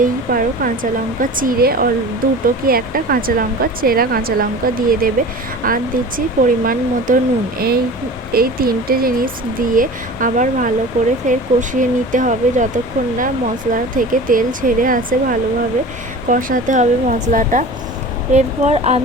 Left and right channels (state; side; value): normal; both; correlation 0.37